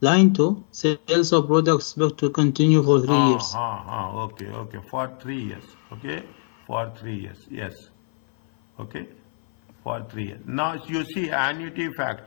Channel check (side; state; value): right; silent; 59 dB below the other